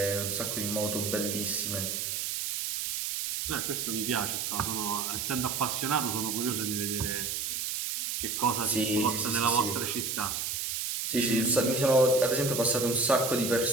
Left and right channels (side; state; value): right; noise; hiss, 2 dB below the sound